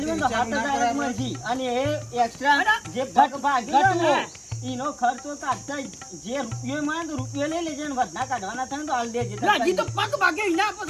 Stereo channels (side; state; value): both; identical; correlation 1.00